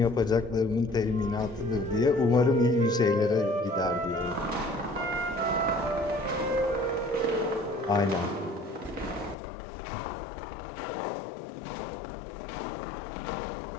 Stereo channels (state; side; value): drops out; right; at 9.3 s